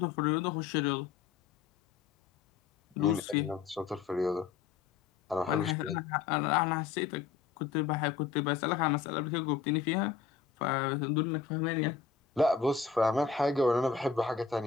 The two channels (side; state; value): right; quieter; 6.2 dB